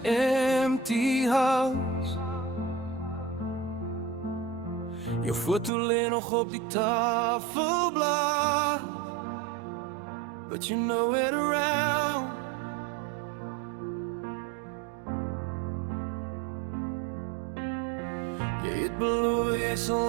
empty house. Jou foto lê nog op die tafelblad, but you're nowhere around. Jy het beloof jy sal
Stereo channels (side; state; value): left; drops out; at 5.7 s